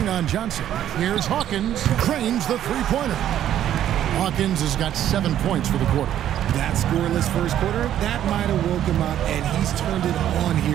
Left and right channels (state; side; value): quieter; left; 11.2 dB